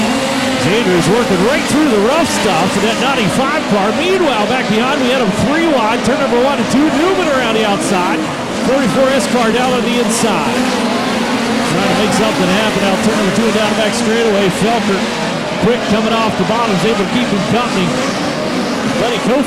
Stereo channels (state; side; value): identical; both; correlation 1.00